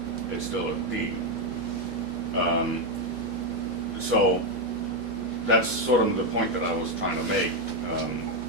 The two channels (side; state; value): both; normal; correlation 0.05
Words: It's still a D. So, that's sort of the point that I was trying to make.